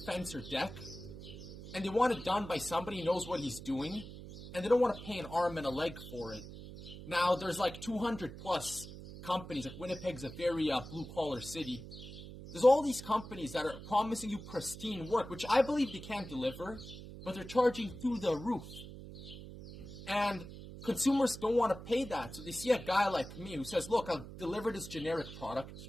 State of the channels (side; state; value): right; noise; hum, 13 dB below the sound